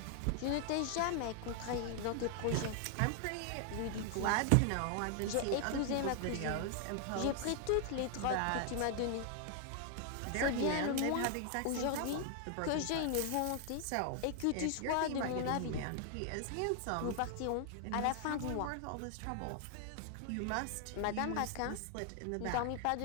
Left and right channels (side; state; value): both; different; correlation 0.00